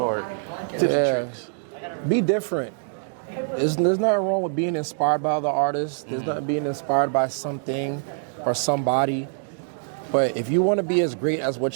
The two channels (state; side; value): silent; left; digital silence